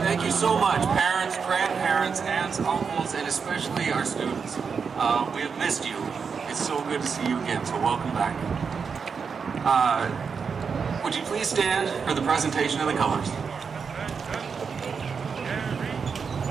Thank you so much, parents, grandparents, aunts, uncles, and especially our students. We have missed you. It's so good to see you again, so welcome back. Would you please stand for the presentation of the colors?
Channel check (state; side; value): quieter; left; 5.8 dB